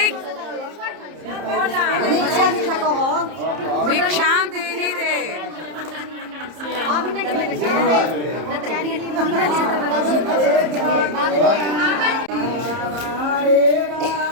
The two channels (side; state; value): left; late; 30 ms